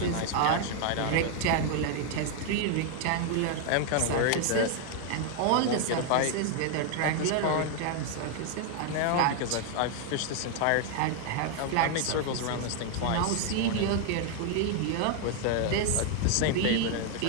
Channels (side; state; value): both; different; correlation 0.00